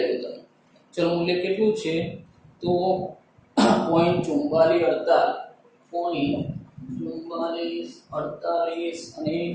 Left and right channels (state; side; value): identical; both; correlation 1.00